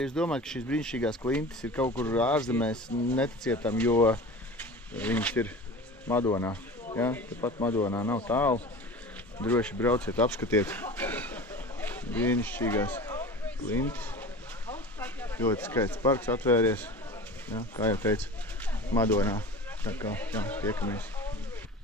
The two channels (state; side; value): normal; both; correlation 0.35